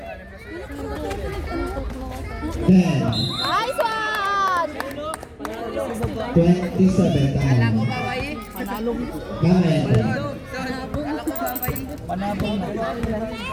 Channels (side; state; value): both; identical; correlation 1.00